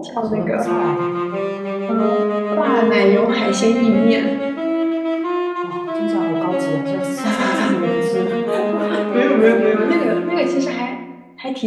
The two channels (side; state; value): both; identical; correlation 1.00